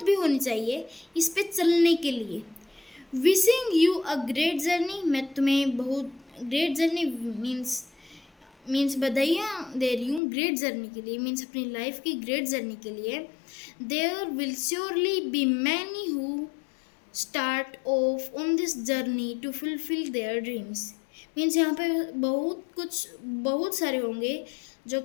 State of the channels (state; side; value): drops out; right; at 10.2 s